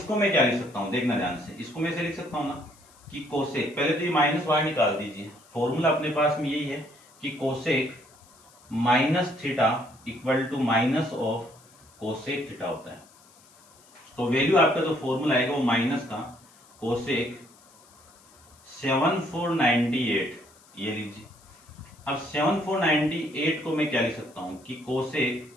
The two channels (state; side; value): noise; left; hiss, 27 dB below the sound